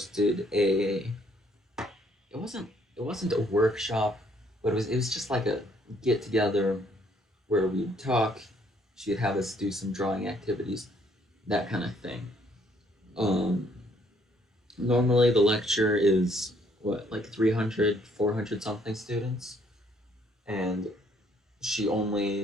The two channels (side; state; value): both; normal; correlation 0.66